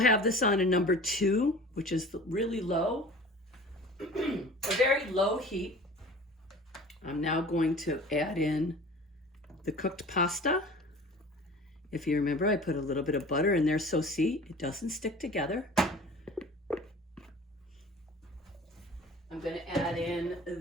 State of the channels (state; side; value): normal; both; correlation 0.42